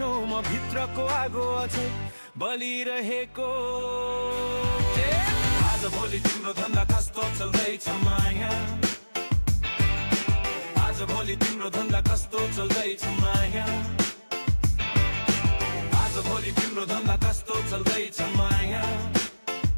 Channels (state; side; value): inverted; both; correlation -1.00